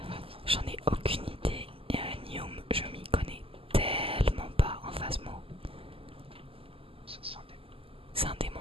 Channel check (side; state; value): left; late; 0.26 ms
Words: J'en ai aucune idée. Et un Nium, je m'y connais tellement pas en Phasmo. C'est un démon. C'est un démon,